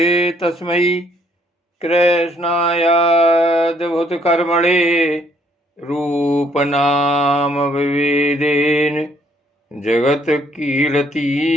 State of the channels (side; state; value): both; normal; correlation 0.67